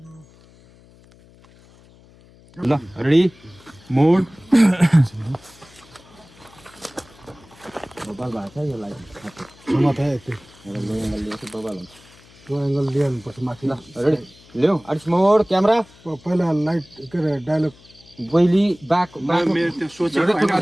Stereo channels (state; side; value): noise; left; hum, 26 dB below the sound